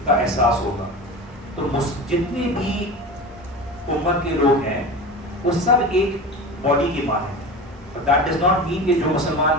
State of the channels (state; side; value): normal; both; correlation 0.30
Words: کا احساس ہوگا. تو جتنے بھی امت کے لوگ ہیں وہ سب ایک باڈی کی مانند ہیں. That does not mean کہ جو مسلمان